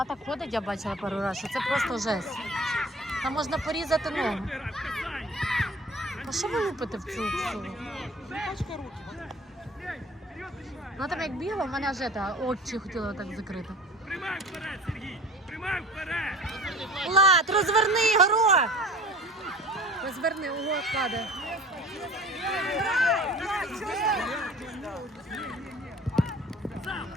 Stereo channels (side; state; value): both; normal; correlation 0.43